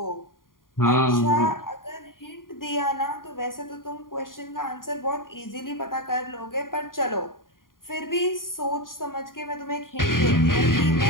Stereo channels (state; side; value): late; right; 0.91 ms